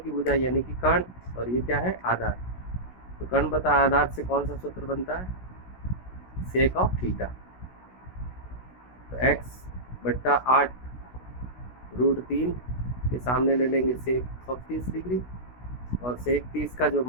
भुजा यानी कि कर्ण, और ये क्या है, आधार। तो कर्ण बता आधार से कौन सा सूत्र बनता है, सेक ऑफ थीटा। तो x बट्टा 8√3 के सामने ले लेंगे सेक ऑफ 30 डिग्री, और सेक 30 का जो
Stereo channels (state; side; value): late; right; 16 ms